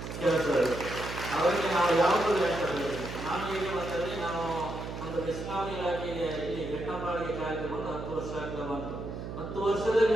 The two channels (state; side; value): noise; right; hum, 7 dB below the sound